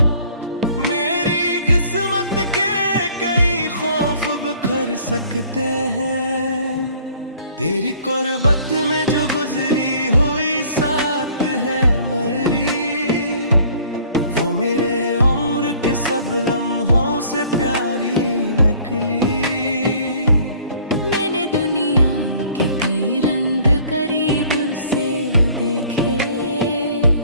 मेरी किस्मत के कई खौफ बिखर सकते हैं। तेरी कुर्बत में जो गुजरी हुई साथ है मेरी, वो मेरे उम्र के सब लम्हों से प्यारी निकली। मैंने दुनिया के कई रंग करीब से देखे,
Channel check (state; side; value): inverted; both; correlation -0.54